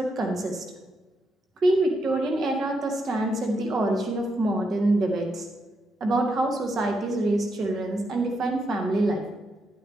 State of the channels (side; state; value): both; normal; correlation 0.81